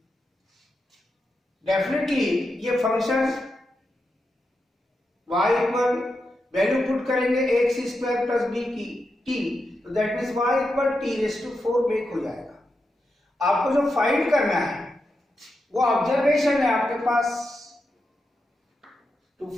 definitely ये function y equal value put करेंगे ax स्क्वायर प्लस बी की t, तो that means y equal t raise to 4 make हो जाएगा। आपको जो फाइंड करना है वो ऑब्जर्वेशन है आपके पास, to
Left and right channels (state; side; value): normal; both; correlation 0.87